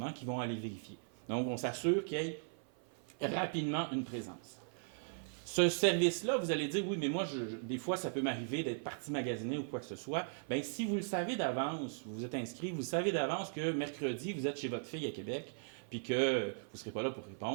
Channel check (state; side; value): silent; left; 52 dB below the other